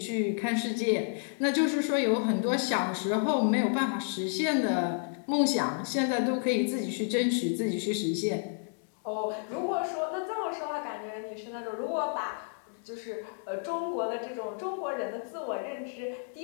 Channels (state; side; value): silent; right; 57 dB below the other